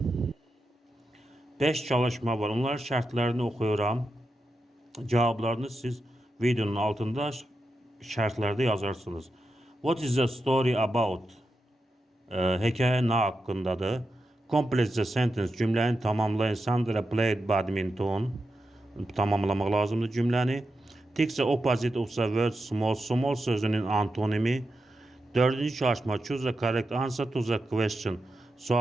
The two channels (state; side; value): normal; both; correlation 0.88